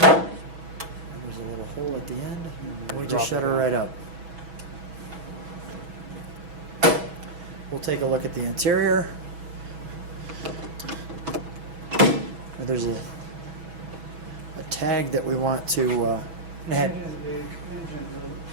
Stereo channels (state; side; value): late; left; 6.1 ms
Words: And there's a little hole at the end. And we drop just shut it her down. right up. We'll take a look at the interior. There's a tag that we want to add. The